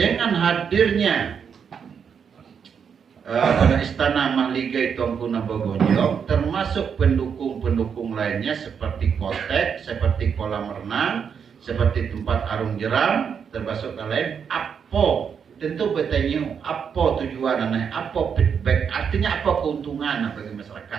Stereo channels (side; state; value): left; quieter; 7.0 dB